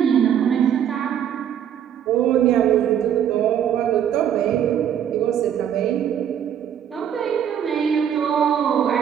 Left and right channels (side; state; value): left; quieter; 9.4 dB